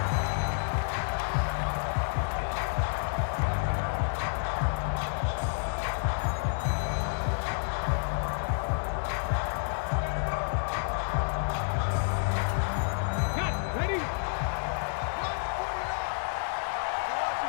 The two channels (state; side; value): silent; right; digital silence